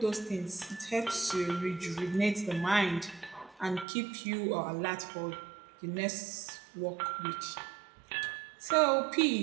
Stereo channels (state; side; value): drops out; left; at 3.9 s